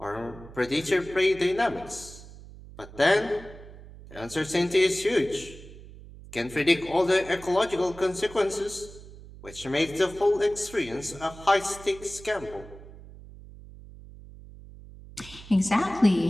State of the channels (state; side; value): noise; right; hum, 17 dB below the sound